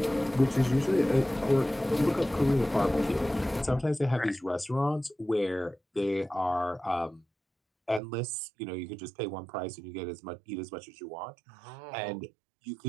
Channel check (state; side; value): drops out; left; at 8.0 s